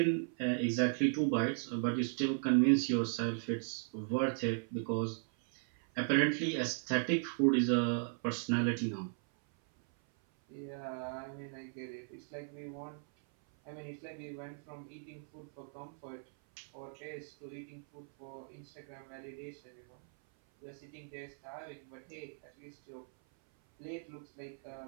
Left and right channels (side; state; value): left; silent; 53 dB below the other